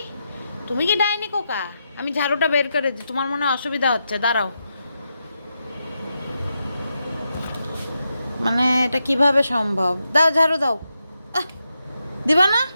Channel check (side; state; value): both; inverted; correlation -0.85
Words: তুমি কি ডাইনি কোকা? আমি ঝাড়ুটা বের করে দিই, তোমার মনে হয় অসুবিধা হচ্ছে, দাঁড়াও। মানে এটা কিভাবে সম্ভব? দাও ঝাড়ু দাও। আহ, দিবা না?